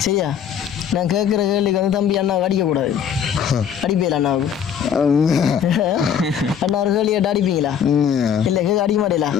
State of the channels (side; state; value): right; quieter; 8.3 dB